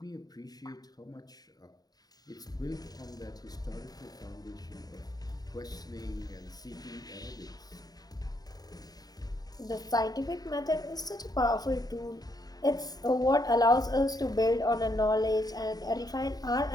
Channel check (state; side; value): late; right; 0.19 ms